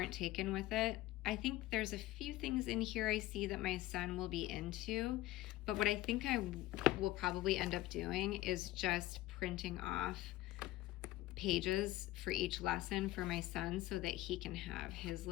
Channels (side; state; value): right; quieter; 16.6 dB